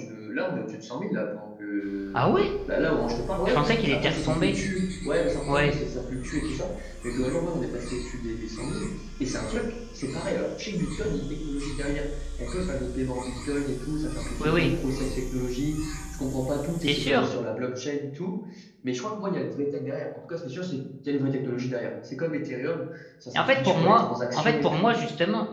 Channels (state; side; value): identical; both; correlation 1.00